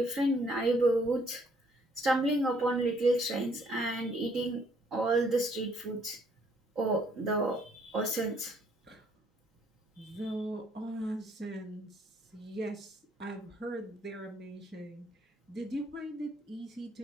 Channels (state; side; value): normal; both; correlation 0.66